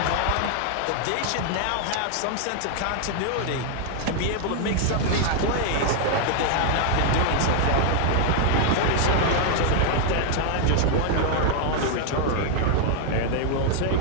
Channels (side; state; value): both; different; correlation 0.00